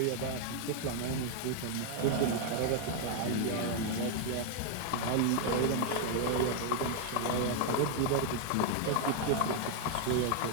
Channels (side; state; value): both; different; correlation 0.00